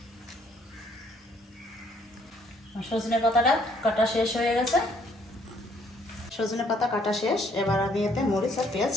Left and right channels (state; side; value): normal; both; correlation 0.65